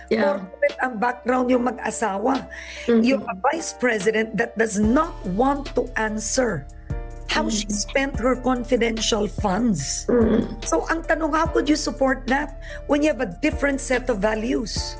Yeah. Corporate ang background yung mag-asawa. You're a vice president that does not want to answer how she spent her confidential funds. So ang tanong, how could you support that when you have a different set of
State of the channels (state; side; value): identical; both; correlation 1.00